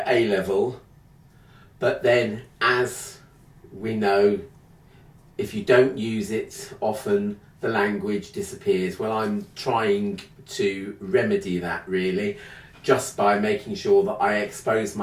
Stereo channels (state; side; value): identical; both; correlation 1.00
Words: A level, but then as we know, if you don't use it often, the language disappears. Well, I'm trying to remedy that really, just by making sure that I expose